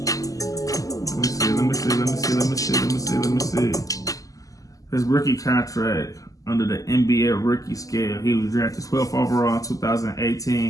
me see. His rookie contract under the NBA rookie scale. He was drafted 12th overall in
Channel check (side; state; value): right; late; 0.17 ms